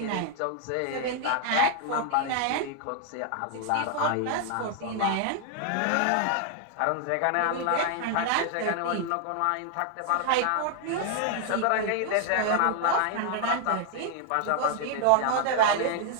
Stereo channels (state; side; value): different; both; correlation 0.00